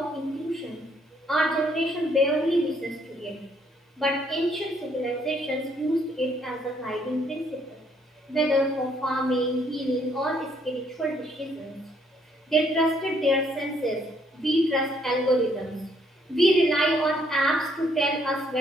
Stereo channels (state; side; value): normal; both; correlation 0.68